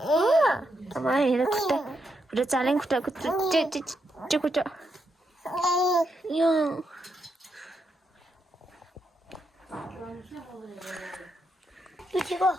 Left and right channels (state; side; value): normal; both; correlation 0.81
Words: अब हेर खुट्टा खुट्टा चालेङ खुट्टा खुट्टा यो